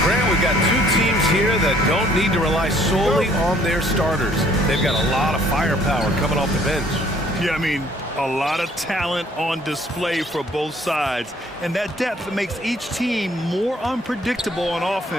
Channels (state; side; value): normal; both; correlation 0.60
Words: Grant, we've got two teams here that don't need to rely solely on their starters. They've got a lot of firepower coming off the bench. Yeah, I mean, a lot of talent on display for both sides. And that depth makes each team more unpredictable on